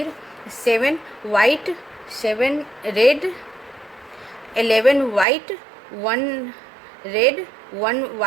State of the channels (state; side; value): drops out; left; at 5.2 s